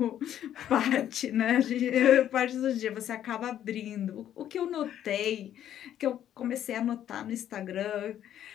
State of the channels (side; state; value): right; quieter; 10.9 dB